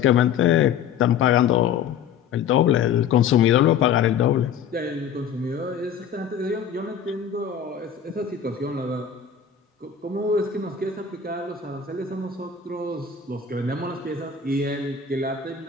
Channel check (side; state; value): right; quieter; 7.7 dB